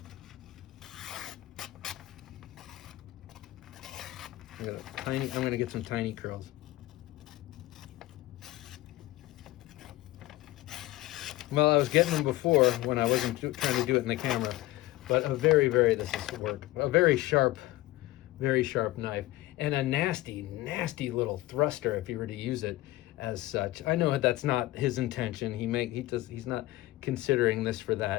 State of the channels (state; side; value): quieter; right; 17.5 dB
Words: I'm gonna get some tiny curls. Well, I was getting them before when I wasn't trying to do it in the camera, but a very, this is work. A very sharp knife, and a nasty, nasty little thruster if you were to use it as such. I know that's not his intention. He's not considering this for